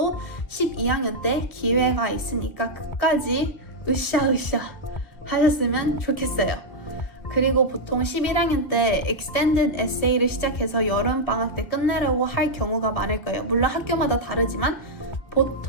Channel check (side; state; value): right; late; 1.8 ms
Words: 12학년 때 기회가 있으니까 끝까지 으쌰으쌰 하셨으면 좋겠어요. 그리고 보통 11학년 때 extended essay를 시작해서 여름방학 때 끝내려고 할 경우가 많을 거예요. 물론 학교마다 다르지만